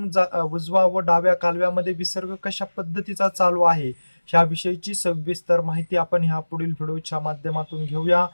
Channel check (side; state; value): both; inverted; correlation -1.00